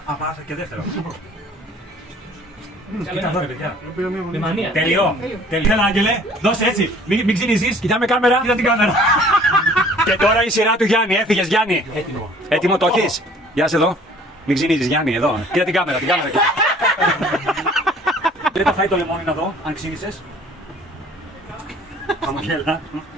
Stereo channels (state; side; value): normal; both; correlation 0.53